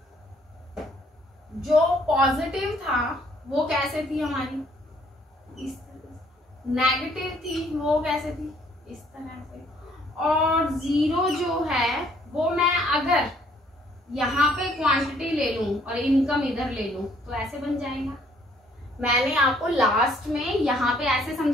जो पॉजिटिव था वो कैसे थी हमारी, इस तरह। नेगेटिव थी वो कैसे थी, इस तरह से। और जीरो जो है वो मैं अगर यहाँ पे क्वांटिटी ले लूं और इनकम इधर ले लूं तो ऐसे बन जाएगा। मैंने आपको लास्ट में यहाँ पे ऐसे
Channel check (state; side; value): normal; both; correlation 0.63